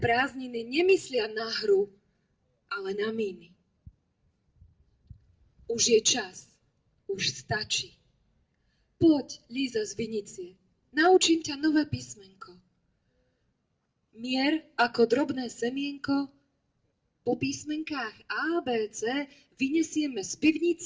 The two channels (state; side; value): identical; both; correlation 1.00